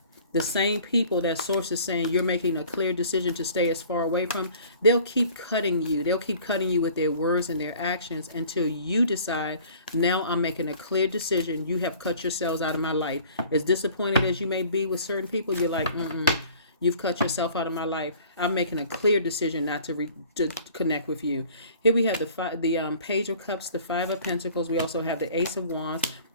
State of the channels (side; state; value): both; inverted; correlation -0.50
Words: the same people that Source is saying you're making a clear decision to stay as far away from, they'll keep cutting you. They'll keep cutting you with their words and their actions until you decide, now I'm making a clear decision. You have cut yourselves out of my life. As disappointed as you may be with certain people, you're like, you've cut yourself out of my life. I'm making a clear decision not to connect with you. Here we have the Page of Cups, the Five of Pentacles. We also have the Ace of Wands.